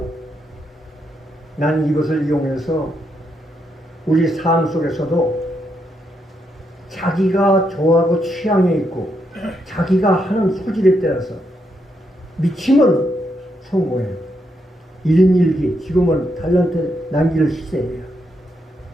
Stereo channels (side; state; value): both; normal; correlation 0.79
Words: 난 이것을 이용해서 우리 삶 속에서도 자기가 좋아하고 취향에 있고 자기가 하는 소질에 따라서 미치면 성공해요. 일인일기, 지금은 달란트 남길 시대예요.